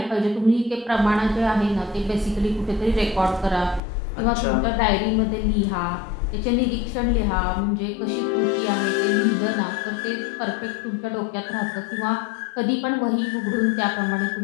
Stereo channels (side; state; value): right; drops out; at 3.8 s